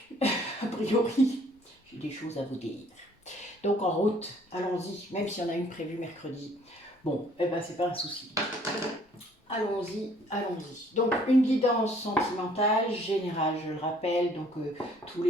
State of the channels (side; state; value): both; normal; correlation 0.59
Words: a priori, j'ai des choses à vous dire. Donc en route, allons-y, même si on a une prévue mercredi. Bon, eh ben c'est pas un souci. Allons-y, allons-y. Donc une guidance sentimentale générale, je le rappelle, donc tous